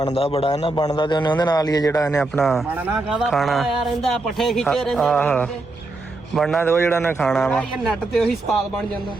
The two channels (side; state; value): left; quieter; 3.0 dB